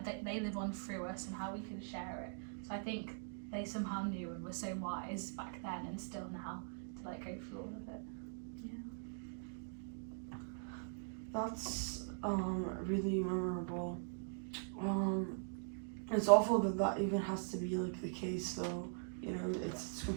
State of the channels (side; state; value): left; silent; digital silence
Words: they live on through us, and how we can share it. So I think they somehow knew and were so wise back then, and still now, to like go through all of it. That's really memorable. It's awful that even has to be like the case, though. It's